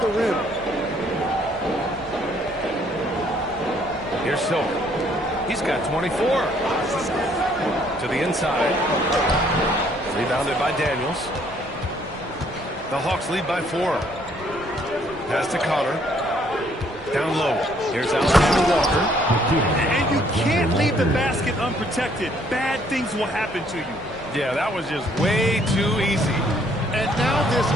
the rim. Here's Silver. He's got 24. To the inside. Rebounded by Daniels. The Hawks lead by 4. Pass to Connor. Down low. Here's Alexander Walker. And you can't leave the basket unprotected. Bad things will happen to you. Yeah, that was just way too easy. And now this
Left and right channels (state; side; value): normal; both; correlation 0.65